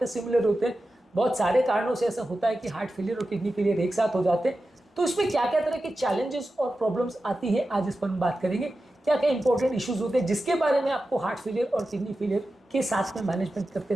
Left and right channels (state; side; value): normal; both; correlation 0.93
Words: सिमिलर होते हैं। बहुत सारे कारणों से ऐसा होता है कि हार्ट फेलियर और किडनी फेलियर एक साथ हो जाते हैं। तो इसमें क्या क्या तरह के चैलेंजेस और प्रॉब्लम्स आती हैं, आज इस पर हम बात करेंगे। क्या क्या इंपॉर्टेंट इश्यूज होते हैं जिसके बारे में आपको हार्ट फेलियर और किडनी फेलियर के साथ में मैनेजमेंट करते